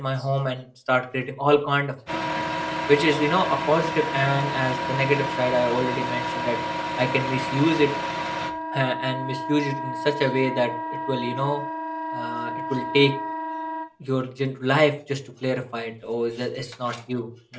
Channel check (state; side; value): identical; both; correlation 1.00